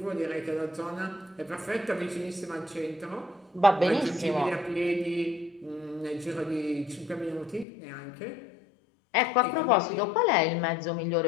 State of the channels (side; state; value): right; drops out; at 7.7 s